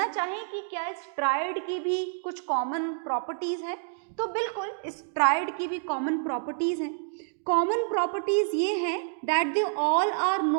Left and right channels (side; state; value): left; silent; digital silence